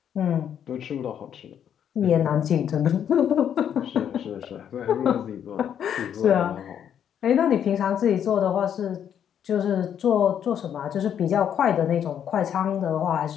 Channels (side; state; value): right; quieter; 9.1 dB